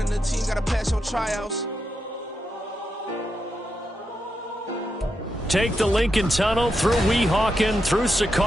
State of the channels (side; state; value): both; normal; correlation 0.85